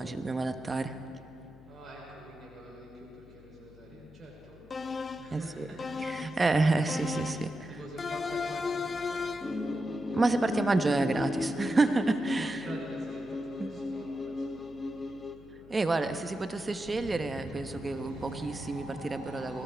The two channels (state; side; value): noise; left; hum, 22 dB below the sound